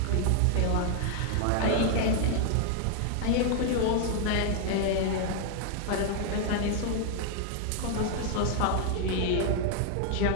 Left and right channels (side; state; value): both; different; correlation 0.00